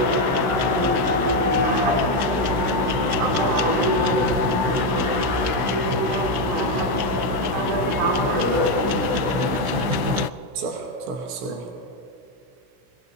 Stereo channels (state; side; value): late; left; 16 ms